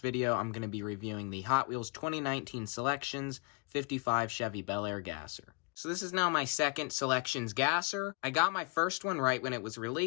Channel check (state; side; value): quieter; right; 32.1 dB